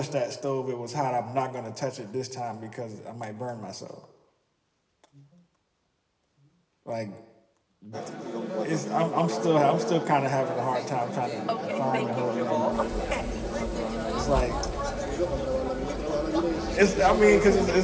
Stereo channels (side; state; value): both; identical; correlation 1.00